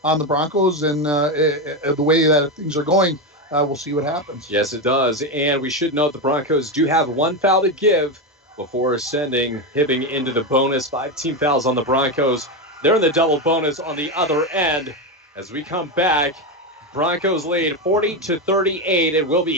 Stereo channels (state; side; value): normal; both; correlation 0.12